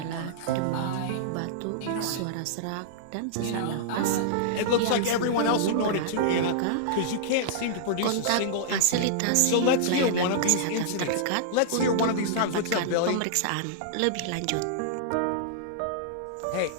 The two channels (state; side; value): different; both; correlation -0.02